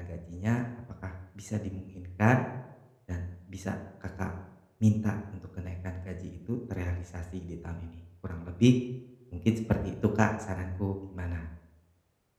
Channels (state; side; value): identical; both; correlation 1.00